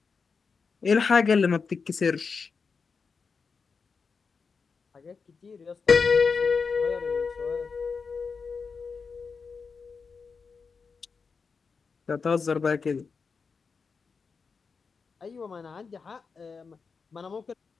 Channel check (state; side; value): quieter; right; 5.1 dB